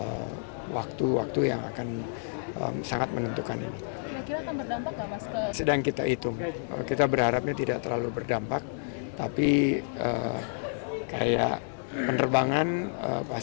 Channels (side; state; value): right; silent; digital silence